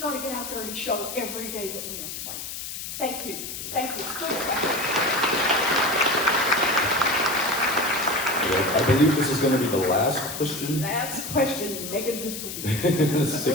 gotta get out there and show every day that we are fighting. Thank you. Thank you. It's good. I believe this is going to be the last question. Last question. Make it a good one.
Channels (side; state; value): left; noise; hiss, 7 dB below the sound